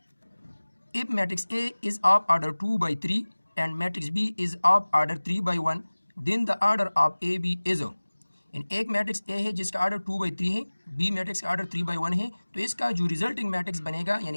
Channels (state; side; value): inverted; both; correlation -1.00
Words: If matrix A is of order 2/3 and matrix B is of order 3/1, then the order of AB is। इन एक मैट्रिक्स A है जिसका ऑर्डर 2/3 है, B मैट्रिक्स का ऑर्डर 3/1 है, तो इसका जो रिजल्टिंग मैट्रिक्स बनेगा